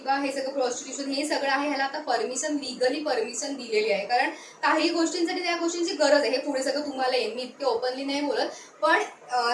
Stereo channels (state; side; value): identical; both; correlation 1.00